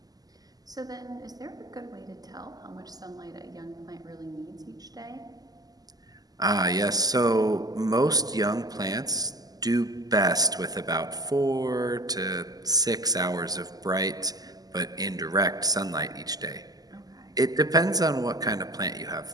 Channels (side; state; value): left; late; 0.18 ms